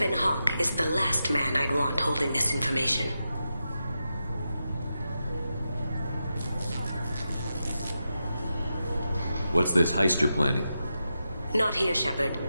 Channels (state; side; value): inverted; both; correlation -0.89